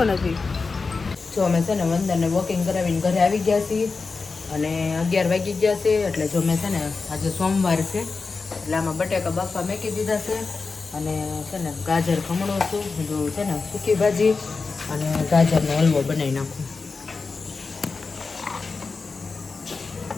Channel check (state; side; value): quieter; right; 4.3 dB